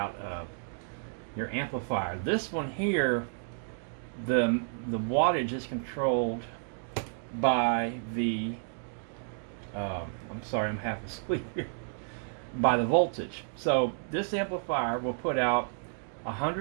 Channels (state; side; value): silent; left; digital silence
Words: of your amplifier. This one here, the wattage is controlled by the I'm sorry, I'm half asleep here, by the voltage. So this amplifier will put out